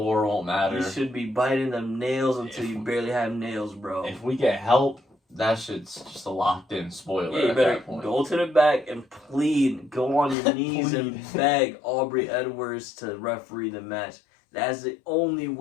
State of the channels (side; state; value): right; drops out; at 10.4 s